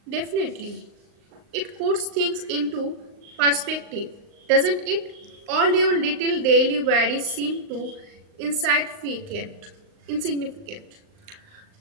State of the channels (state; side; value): late; left; 39 ms